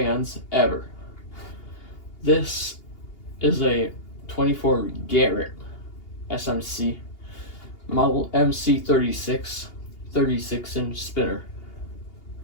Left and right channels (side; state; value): right; late; 2.8 ms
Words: ever. This is a 24 Garrett SMC model MC36 36-inch spinner.